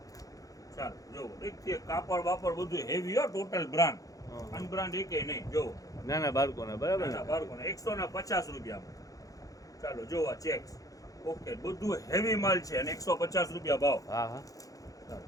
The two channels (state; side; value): late; right; 0.17 ms